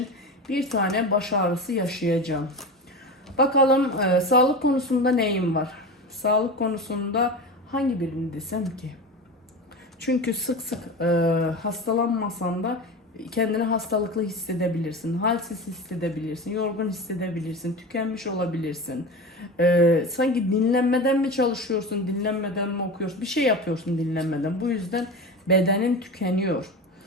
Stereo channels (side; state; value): both; normal; correlation 0.27